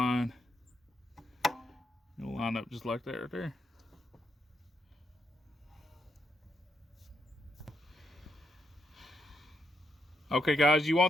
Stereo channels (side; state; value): both; normal; correlation 0.79